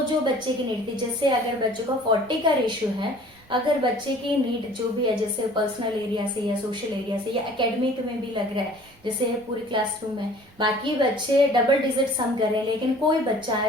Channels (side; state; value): both; normal; correlation 0.50